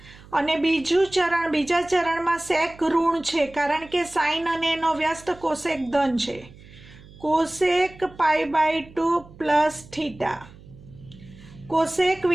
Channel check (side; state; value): right; noise; hum, 21 dB below the sound